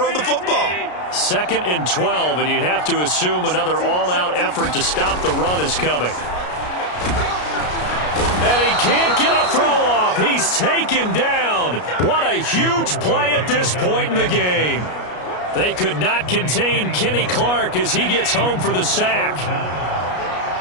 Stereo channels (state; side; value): late; right; 33 ms